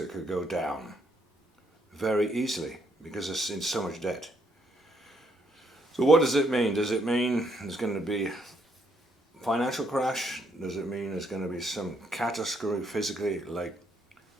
could go down very easily because it's in so much debt. So what does it mean? Does it mean there's going to be a financial crash? Does it mean there's going to be some catastrophe physically, like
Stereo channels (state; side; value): normal; both; correlation 0.72